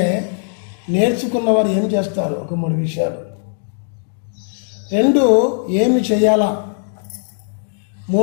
నేర్చుకున్నవారు ఏం చేస్తారు, ఒక 3 విషయాలు. 2 ఏమి చేయాలా.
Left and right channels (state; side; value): silent; right; digital silence